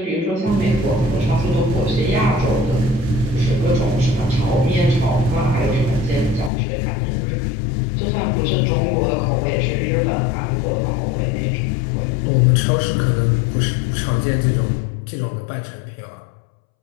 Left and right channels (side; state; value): right; drops out; at 6.5 s